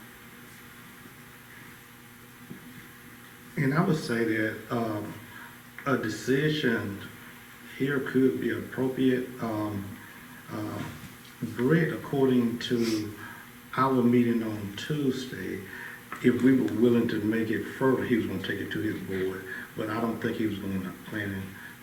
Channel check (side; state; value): both; identical; correlation 1.00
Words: And I would say that a decision here could be appropriate. Brett, according to our meeting on Tuesday, if we were willing to make it further, he was going to take it to his board. But I don't think he was going to plan